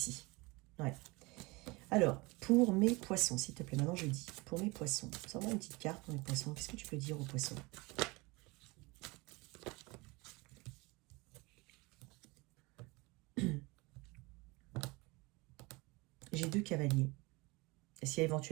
Ouais. Alors, pour mes poissons, s'il te plaît, maintenant je dis, pour mes poissons, sors-moi une petite carte pour mes poissons. Qu'est-ce que tu peux dire aux poissons? J'ai 2 cavaliers. Est-ce qu'il y a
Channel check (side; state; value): left; quieter; 24.7 dB